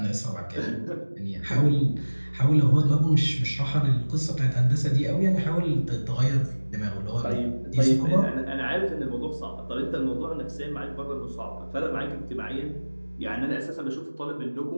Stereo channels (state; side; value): inverted; both; correlation -1.00